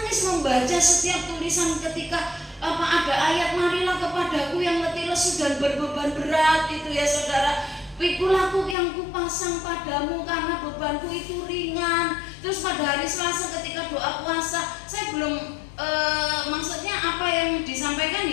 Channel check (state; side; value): drops out; right; at 8.8 s